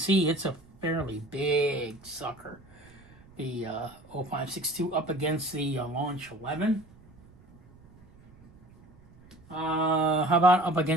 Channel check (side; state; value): right; noise; rumble, 25 dB below the sound